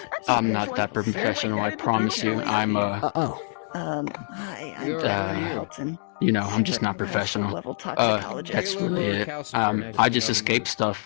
I'm not that professional, I promise you. I'm oh. Hi, I'm You're- Bethany uh, Halton. you know, I'm just not Super high school professional. level That's toxicologist. really it. I just escape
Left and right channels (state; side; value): silent; right; digital silence